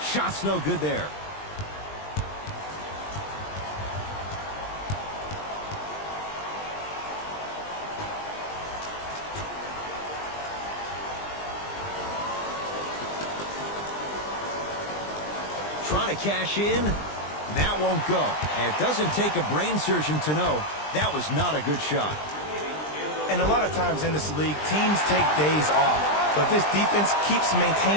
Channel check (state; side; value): late; right; 20 ms